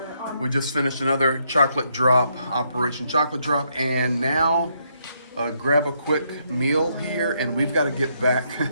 We just finished another chocolate drop, Operation Chocolate Drop, and now grab a quick meal here, and we've got to get back to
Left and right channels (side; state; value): both; inverted; correlation -0.75